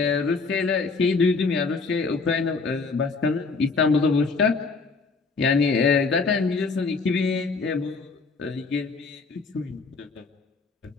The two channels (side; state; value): right; quieter; 4.3 dB